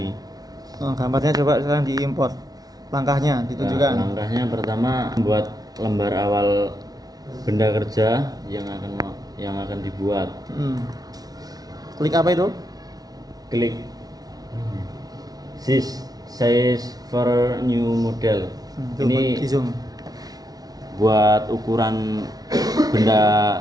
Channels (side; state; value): left; late; 0.19 ms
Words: Gambarnya coba sekarang diimpor. Langkahnya ditunjukkan. Langkahnya pertama membuat lembar awal benda kerja yang akan dibuat. Klik apa itu? Klik size for new model. Ini di zoom. buat ukuran